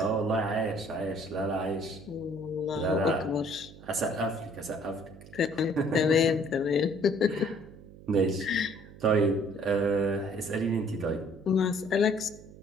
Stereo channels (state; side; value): noise; right; hum, 19 dB below the sound